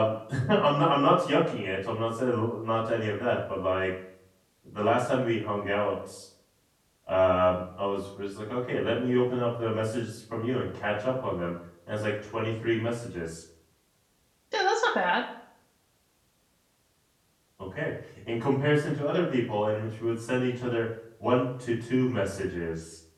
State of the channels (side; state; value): both; identical; correlation 1.00